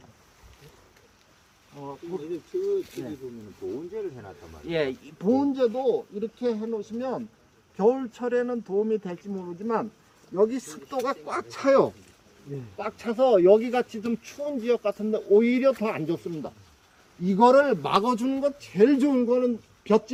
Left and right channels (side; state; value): both; identical; correlation 1.00